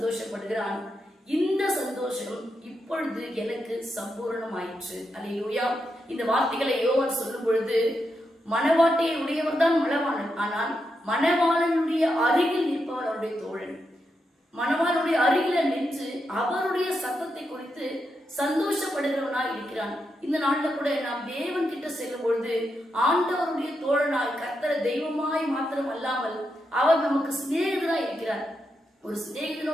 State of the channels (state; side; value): normal; both; correlation 0.84